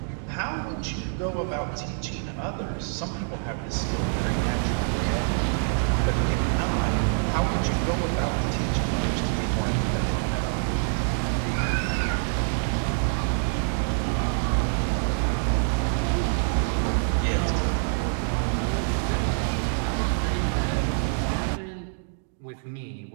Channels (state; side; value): silent; left; digital silence